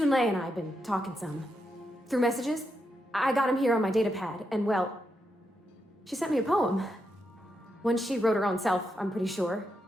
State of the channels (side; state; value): both; normal; correlation 0.83